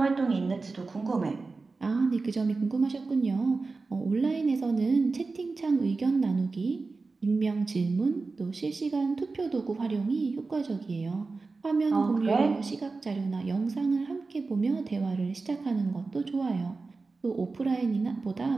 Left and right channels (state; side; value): quieter; left; 3.9 dB